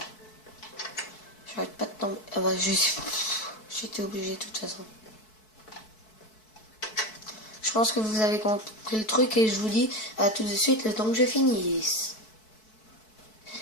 J'arrête pas de tomber. Ah bah, j'étais obligée de toute façon. Je pense que vous avez compris le truc et je vous dis à tout de suite le temps que je finisse.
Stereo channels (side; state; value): right; late; 4.6 ms